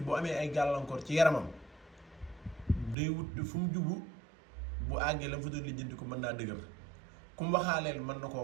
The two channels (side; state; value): left; drops out; at 3.0 s